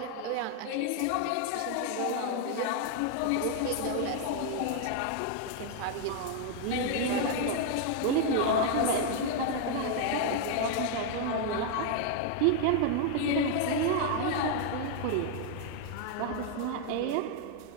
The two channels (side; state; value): both; different; correlation 0.00